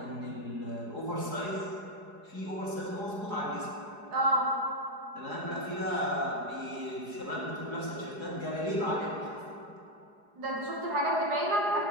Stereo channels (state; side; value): late; left; 4.8 ms